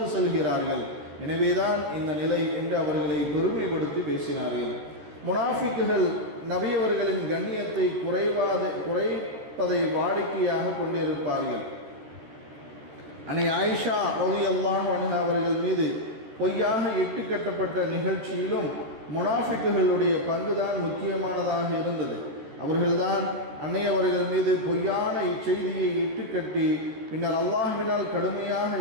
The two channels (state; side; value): late; left; 13 ms